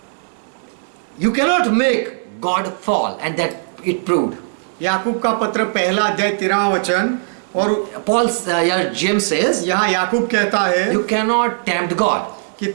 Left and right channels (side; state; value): left; silent; digital silence